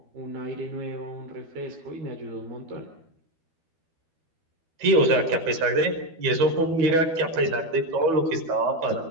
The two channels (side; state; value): left; late; 12 ms